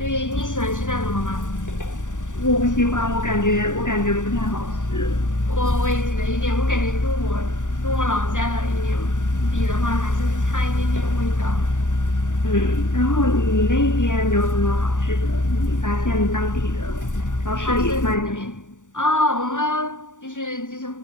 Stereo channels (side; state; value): right; late; 0.86 ms